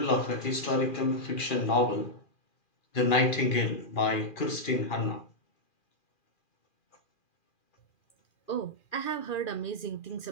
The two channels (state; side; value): late; right; 2.4 ms